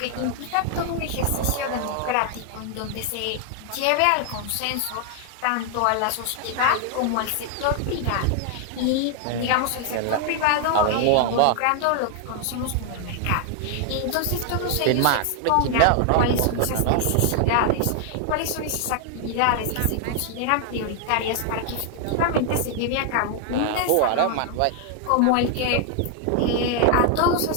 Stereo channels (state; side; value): different; both; correlation 0.00